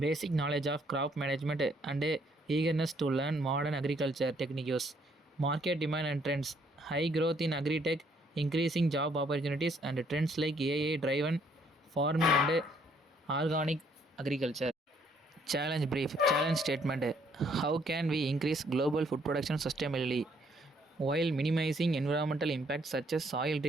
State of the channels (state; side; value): normal; both; correlation 0.67